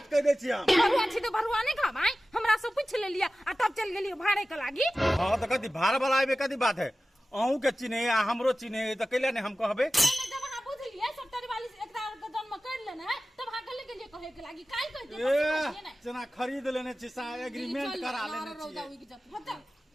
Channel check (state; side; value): normal; both; correlation 0.96